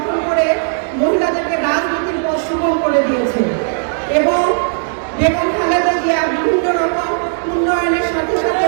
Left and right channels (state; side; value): silent; left; digital silence